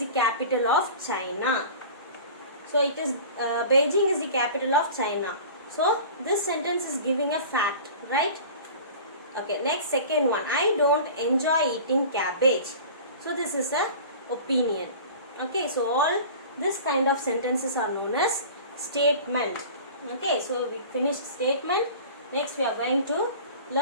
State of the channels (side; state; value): both; inverted; correlation -0.39